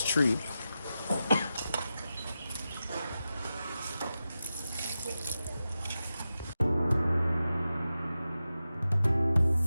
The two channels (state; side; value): inverted; both; correlation -0.92